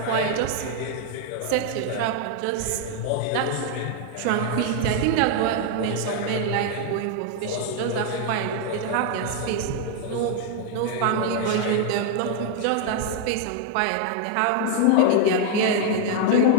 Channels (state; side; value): different; both; correlation 0.00